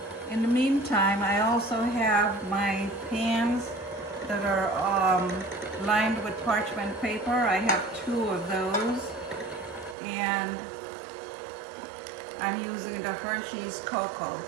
In the meantime, I also have my pans that are lined with parchment paper. I have 2 of those, and I'm using the Hershey's cocoa.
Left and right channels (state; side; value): drops out; left; at 10.0 s